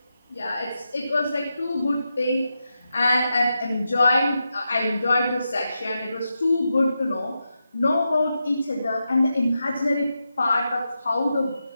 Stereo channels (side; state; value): both; inverted; correlation -0.87